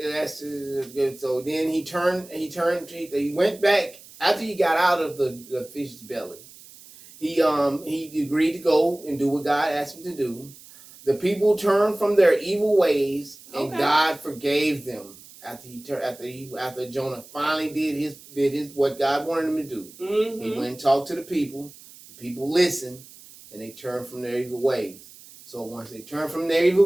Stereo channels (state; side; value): noise; right; hiss, 20 dB below the sound